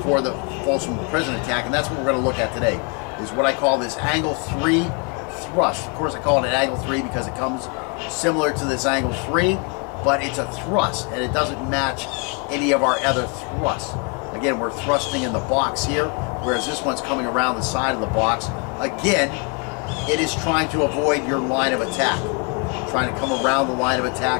for the Folsom Prison attack, and that's what we're going to look at today, is what I call this angle 3 thrust. Of course, I call it an angle 3 because it comes similar to this angle 3, but it's a thrust, and it doesn't match any of our other thrusts. Again, we're thrusting in the box here, whereas this one's coming around the side of the box. Again, it is trying to avoid your line of attack, trying to come around the line of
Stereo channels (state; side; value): quieter; right; 33.8 dB